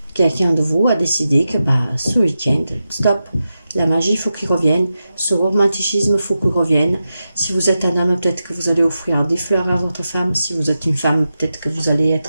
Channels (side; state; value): both; inverted; correlation -0.91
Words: quelqu'un de vous a décidé que ce week-end, stop, la magie, il faut qu'il revienne, ce romanticisme, il faut qu'il revienne. Si vous êtes un homme, peut-être que vous allez offrir des fleurs à votre femme. Si vous êtes une femme, peut-être que vous allez